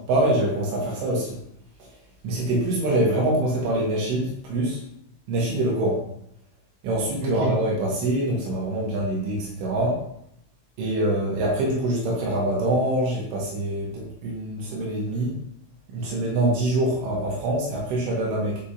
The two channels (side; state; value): left; late; 16 ms